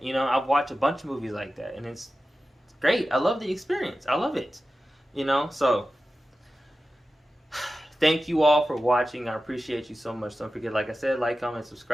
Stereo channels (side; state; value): both; normal; correlation 0.94